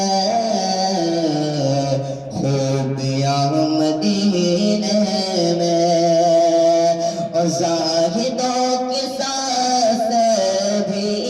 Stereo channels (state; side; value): identical; both; correlation 1.00